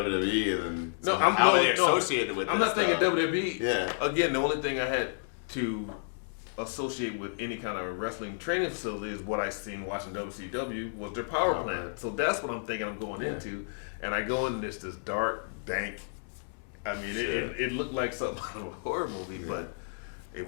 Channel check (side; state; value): right; silent; digital silence